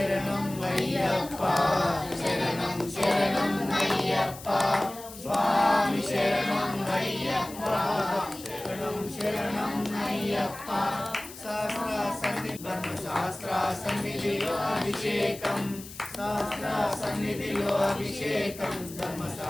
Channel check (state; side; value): noise; left; hiss, 15 dB below the sound